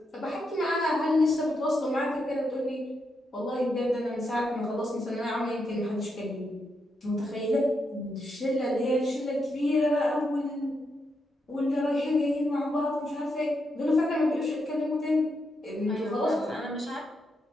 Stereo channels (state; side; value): normal; both; correlation 0.82